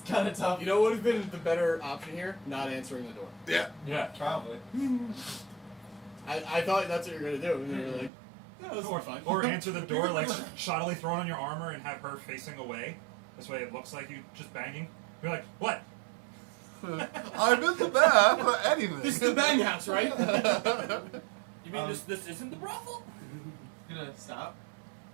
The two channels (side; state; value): left; drops out; at 8.1 s